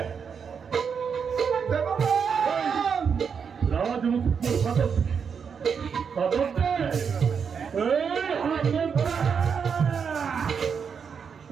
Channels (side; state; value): left; quieter; 6.5 dB